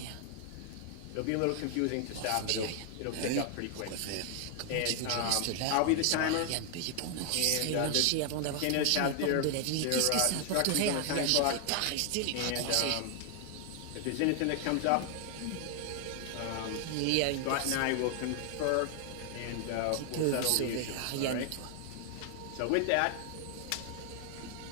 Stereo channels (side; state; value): both; different; correlation 0.00